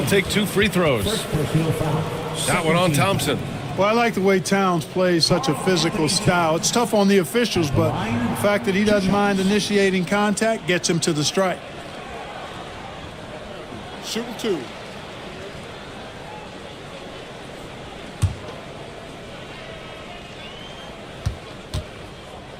take 2 free throws. That one on Thompson. Well, I like the way Towns plays such a physical style. It's tough on the officials, but the fact that he doesn't mind initiating contact gets him to the strike. Shooting 2.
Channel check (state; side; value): identical; both; correlation 1.00